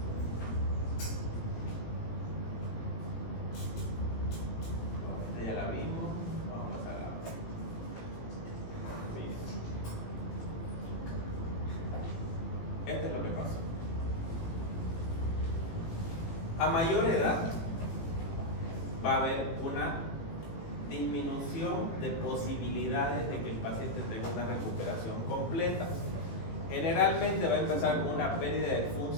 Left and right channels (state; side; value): late; right; 18 ms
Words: Esta ya la vimos, vamos a pasar a la otra. Miren. Esto es lo que pasa. A mayor edad va a haber una disminución de posibilidades de que el paciente tenga una recuperación completa. Generalmente va a empezar con una pérdida de